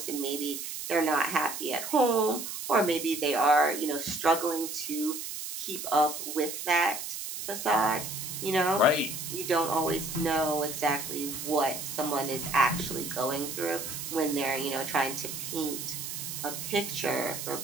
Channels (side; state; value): right; noise; hiss, 6 dB below the sound